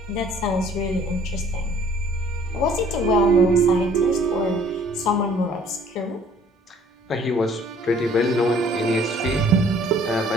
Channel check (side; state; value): both; normal; correlation 0.56